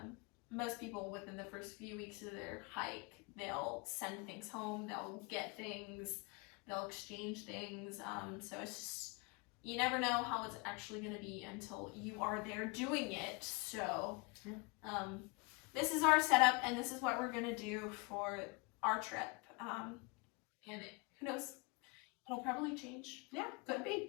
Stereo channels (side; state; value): right; quieter; 29.6 dB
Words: Most people within the first few weeks of their hike, they'll send things home, they'll get things, they'll exchange things. So it's just, you never know how it's actually going to be until you are there doing it. So this is our setup, and this is what we're going to do for our trip. And who knows? It'll probably change. Yeah, could